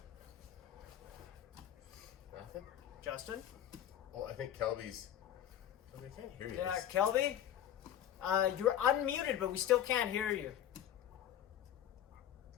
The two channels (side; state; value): right; quieter; 10.9 dB